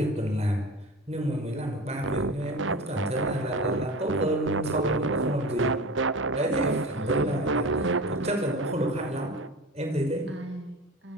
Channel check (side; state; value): both; normal; correlation 0.32